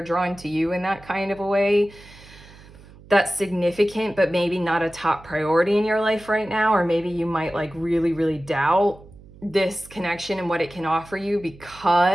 drawn to you in that kind of a way, that's significant, but maybe not a top priority in your life right now. Or maybe you might like really, really doubt this connection and what it can offer you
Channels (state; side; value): noise; right; hum, 22 dB below the sound